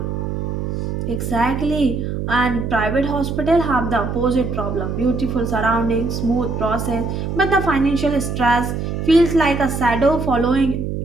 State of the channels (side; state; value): right; noise; hum, 3 dB below the sound